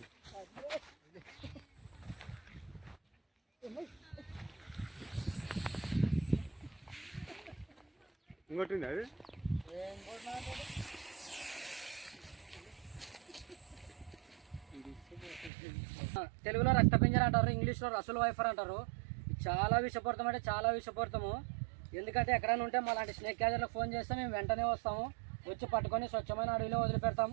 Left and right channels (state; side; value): drops out; left; at 15.5 s